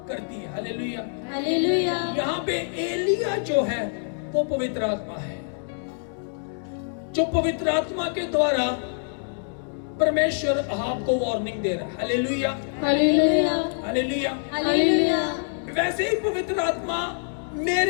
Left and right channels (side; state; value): right; silent; digital silence